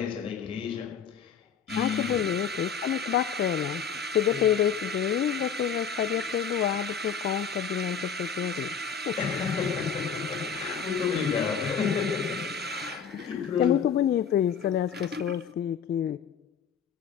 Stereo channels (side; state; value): right; quieter; 6.8 dB